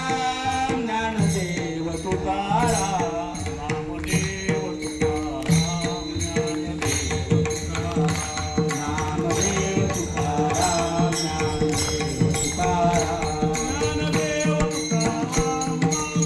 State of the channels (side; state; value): both; identical; correlation 1.00